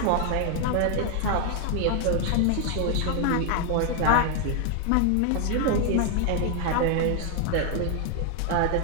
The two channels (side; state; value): both; different; correlation 0.00